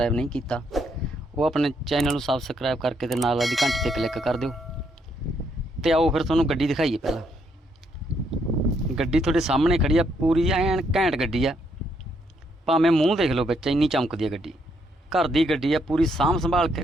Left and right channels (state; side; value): normal; both; correlation 0.74